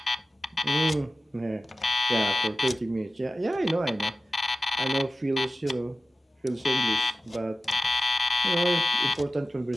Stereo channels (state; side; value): normal; both; correlation 0.95